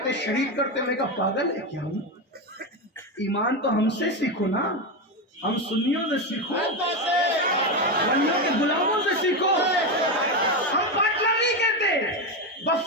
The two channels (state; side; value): normal; both; correlation 0.12